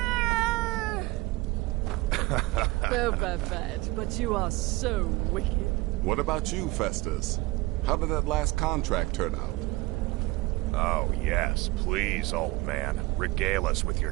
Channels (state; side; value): quieter; left; 21.7 dB